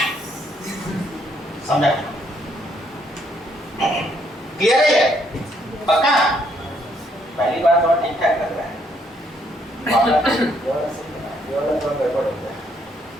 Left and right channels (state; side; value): normal; both; correlation 0.70